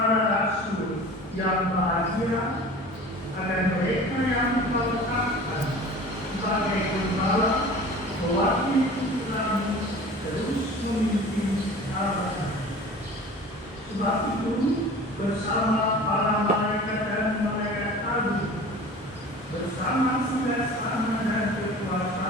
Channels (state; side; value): normal; both; correlation 0.40